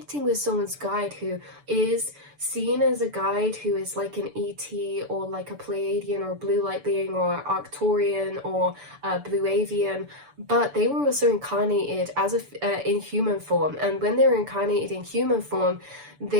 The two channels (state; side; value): late; left; 6.9 ms